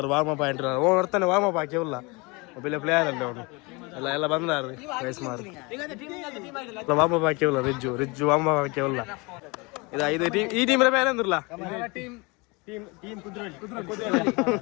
ವಾರ್ಮಪ್ ಆಂಟ್ಲಾರು ಓ ಬರ್ತಾನೆ ವಾರ್ಮಪ್ ಹಾಕಿ ಉಲ್ಲ ಒಬ್ಬ ಪ್ಲೇಯರ್ ಅಲ್ಲ ಅವನು ಎಲ್ಲ ಬಂದಾರು ವಯಸ್ಸು ಮಾರು ವಾರ್ಮಪ್ ಹಾಕಿ ಉಲ್ಲ ರಿಜ್ಜು ವಾರ್ಮಪ್ ಹಾಕಿ ಉಲ್ಲ ಇದು ಈ ಟೀಮ್ ಬೇರೆ ಅಂದ್ರಲ್ಲ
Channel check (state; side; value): quieter; right; 27.2 dB